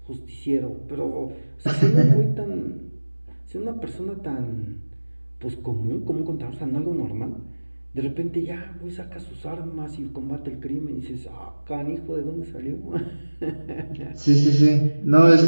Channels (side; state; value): both; inverted; correlation -1.00